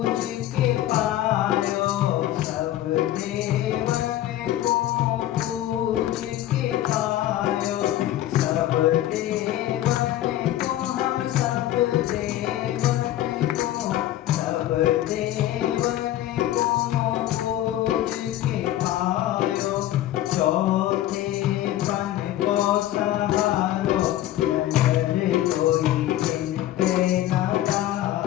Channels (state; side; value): quieter; right; 13.5 dB